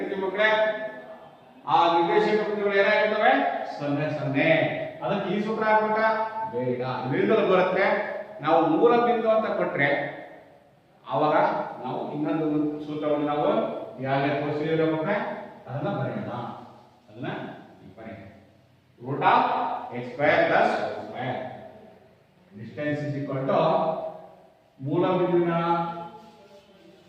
ಮಕ್ಕಳೇ? ಆ ನಿರ್ದೇಶಾಂಕ ಬಿಂದುಗಳು ಏನಾಗಿರ್ತವೆ? 0 0. ಅದಕ್ಕೆ ಈ ಸೂತ್ರ ಹಾಕ್ಬೇಕಾ? ಬೇಡ. ಇದರಿಂದಲೂ ಬರುತ್ತೆ. ನಾವು ಮೂಲ ಬಿಂದು ಅಂತ ಕೊಟ್ರೆ ಆವಾಗ ನಾವು ಇನ್ನೊಂದು ಸೂತ್ರವನ್ನು ನಾವು ಯಾವ್ಯಾವ ತೋರಿಸಿದ್ರೆ ಮಕ್ಕಳೇ ಅದನ್ನ ಬರೆಯೋಣ. ಅದನ್ನ ಬರೆಯೋಣ. Root of x square plus y square distance is equal to ಮೂಲ ಬಿಂದುವಿನ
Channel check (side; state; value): both; identical; correlation 1.00